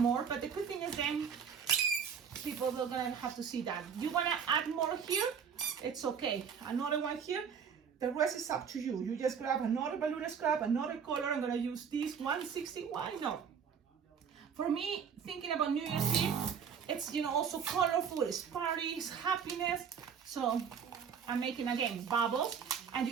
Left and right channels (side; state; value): left; quieter; 7.0 dB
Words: but the good thing is then people are gonna have to see that. You want to add more here, it's okay. Another one here, the rest is up to you. You just grab another balloon scrap, another color. I'm gonna use this 160. Why not? For me, thinking about New Year's Eve, it's, you know, also colorful, it's parties, happiness. So I'm making again bubbles, and